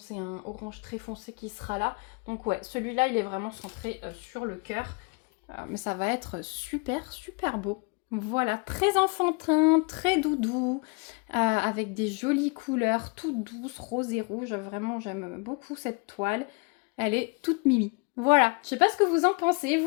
un orange très foncé qui sera là. Donc ouais, celui-là, il est vraiment centré sur le cœur. Mais ça va être super, super beau. Voilà, très enfantin, très doudou, avec des jolies couleurs, toutes douces, rose et rouge. Vraiment, j'aime beaucoup cette toile. Elle est toute mimi. Voilà, je sais pas ce que vous en pensez, vous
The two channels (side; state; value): right; quieter; 32.2 dB